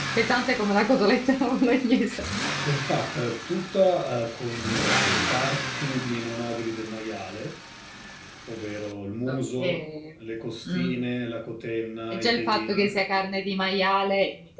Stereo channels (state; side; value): identical; both; correlation 1.00